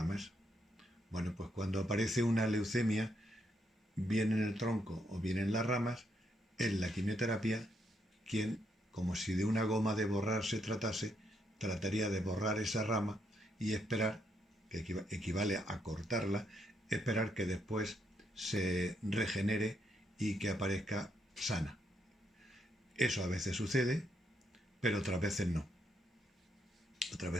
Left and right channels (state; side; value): normal; both; correlation 0.77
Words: Bueno, pues cuando aparece una leucemia, bien en el tronco o bien en las ramas, es la quimioterapia quien, como si de una goma de borrar se tratase, trataría de borrar esa rama y esperar, que equivale a cortarla, esperar que después se regenere y que aparezca sana. Eso a veces sucede, pero otras veces no.